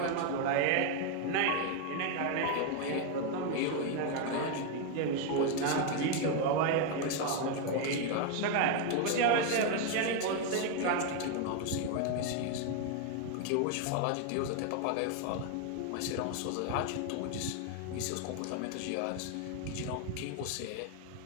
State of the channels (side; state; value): both; different; correlation 0.01